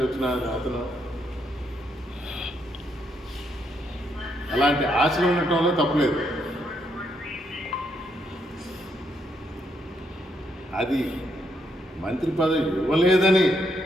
వచ్చిన అతను, అలాంటి ఆశలు ఉండటంలో తప్పలేదు. అది మంత్రి పదవి ఇవ్వలేదని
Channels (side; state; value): both; normal; correlation 0.76